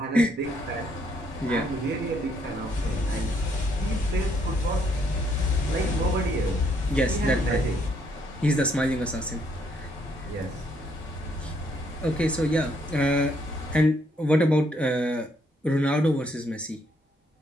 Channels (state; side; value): normal; both; correlation 0.71